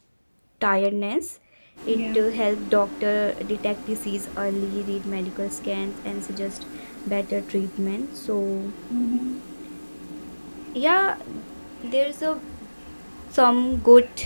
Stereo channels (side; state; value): both; inverted; correlation -1.00